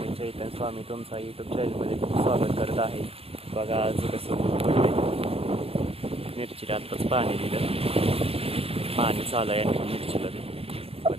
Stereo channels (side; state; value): left; late; 0.28 ms